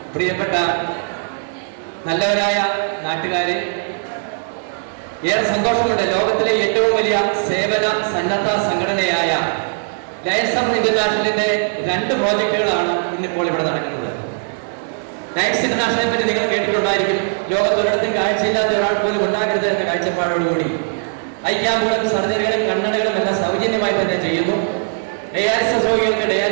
പ്രിയപ്പെട്ട നല്ലവരായ നാട്ടുകാരെ, ഏറെ സന്തോഷമുണ്ട്. ലോകത്തിലെ ഏറ്റവും വലിയ സേവന സന്നദ്ധ സംഘടനയായ ലയൺസ് ഓഫ് ഇന്റർനാഷണലിന്റെ 2 പ്രോജക്റ്റുകളാണ് ഇന്നിപ്പോൾ ഇവിടെ നടക്കുന്നത്. ലയൺസ് ഇന്റർനാഷണലിനെ പറ്റി നിങ്ങൾ കേട്ടിട്ടുണ്ടായിരിക്കും. ലോകത്തൊരിടത്തും കാഴ്ചയില്ലാത്ത ഒരാൾ പോലും ഉണ്ടാകരുത് എന്ന കാഴ്ചപ്പാടോടുകൂടി ഐ ക്യാമ്പുകളും സർജറികളും കണ്ണടകളും എല്ലാം സൗജന്യമായി തന്നെ ചെയ്യുന്നു. ഡയാലിസിസ് രോഗികൾക്ക്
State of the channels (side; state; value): left; silent; 59 dB below the other